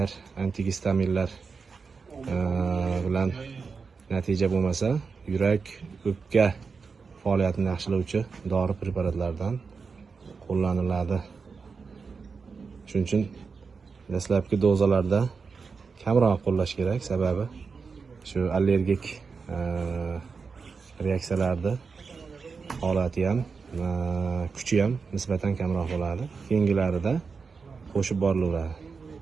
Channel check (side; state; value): left; quieter; 5.1 dB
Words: antigistaminlar bilan natija bo'lmasa, yurak o'pka faoliyatini yaxshilovchi dori preparatlardan qo'llaniladi. Shuning uchun dastlabki dozalarda kamroq qo'llash kerak, sababi shu allergik reaksiyalarni holati ham, kuchi ham nisbatan kamroq bo'ladi. Keyingilarida qo'shib borilaveradi.